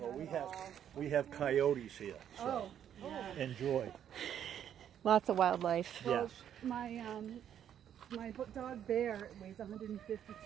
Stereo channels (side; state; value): left; quieter; 9.7 dB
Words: we have coyotes here, so enjoy. Lots of wildlife. Yes. My dog Bear weighs